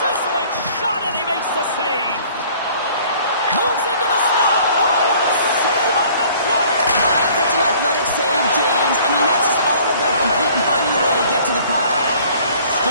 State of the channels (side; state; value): both; inverted; correlation -0.54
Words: shot, and he makes the save. Moves into the slot. Oh, what a save on the play! Such an athletic save, James. I mean, that's just all about competing, finding a way to get to the puck.